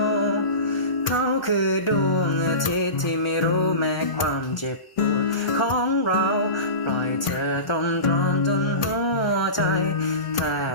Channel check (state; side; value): late; right; 1.0 ms